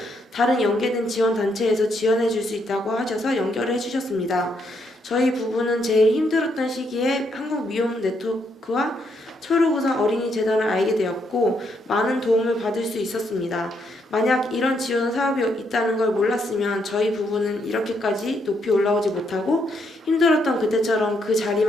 다른 연계된 지원단체에서 지원해 줄 수 있다고 하셔서 연결을 해주셨습니다. 저희 부부는 제일 힘들었던 시기에 한국미혼네트워크와 초록우산 어린이재단을 알게 되었고 많은 도움을 받을 수 있었습니다. 만약 이런 지원 사업이 있다는 걸 몰랐으면 저희 부부는 이렇게까지 높이 올라오지 못하고 힘들었던 그때처럼 그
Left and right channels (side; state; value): both; normal; correlation 0.76